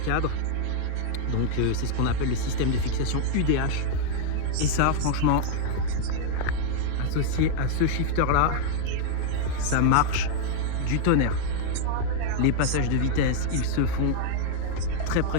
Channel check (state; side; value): different; both; correlation 0.00